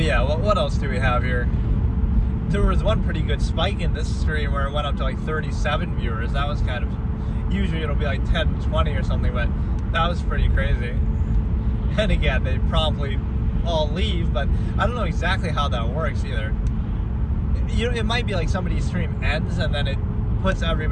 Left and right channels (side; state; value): both; identical; correlation 1.00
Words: yeah, what else do we have here? There was one pretty good spike in this stream where it went up to like 37 viewers. That was kind of, usually it'll be like 10, 20 or something, but that was pretty crazy. And again, they promptly all leave, but I don't know exactly how that works either. It might be like somebody's stream ends and then it puts